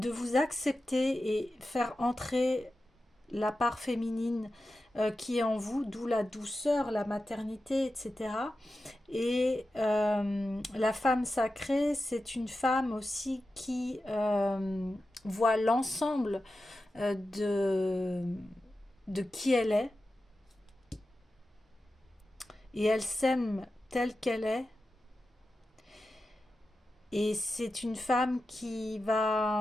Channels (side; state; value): both; normal; correlation 0.92